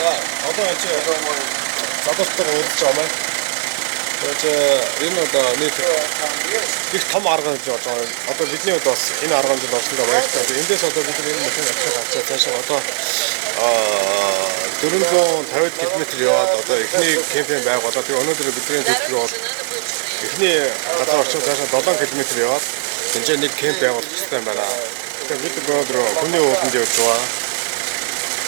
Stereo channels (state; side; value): silent; left; 56 dB below the other